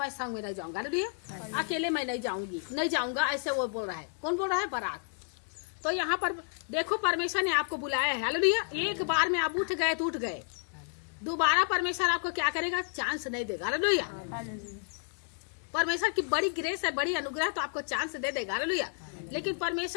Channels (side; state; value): right; silent; digital silence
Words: संग में नहीं जाऊंगा। हालेलुया। अकेले मैं नहीं जाऊंगा, ऐसे वो बोल रहा है। कौन बोल रहा है? बराक। तो यहाँ पर देखो परमेश्वर ने आपको बुलाया है। हालेलुया। एक बार में आप उठ गए तो उठ गए, दोबारा परमेश्वर आपको क्या करेगा, चांस नहीं देगा। हालेलुया। परमेश्वर की बड़ी ग्रेस है, बड़ी अनुग्रह, तो आपको चांस दे देगा। हालेलुया। लेकिन